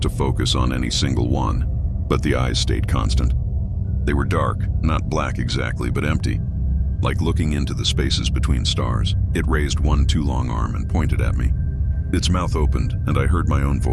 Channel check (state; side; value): identical; both; correlation 1.00